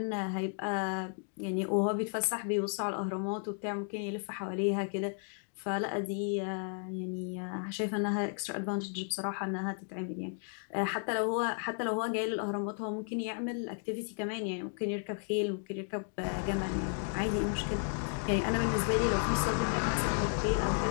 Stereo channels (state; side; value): silent; right; 55 dB below the other